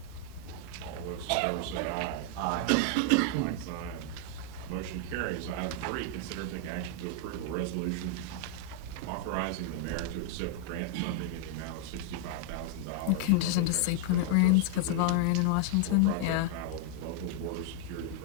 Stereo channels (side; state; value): both; different; correlation 0.00